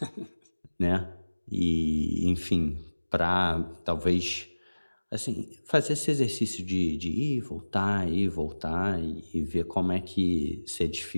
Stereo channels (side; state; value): both; inverted; correlation -1.00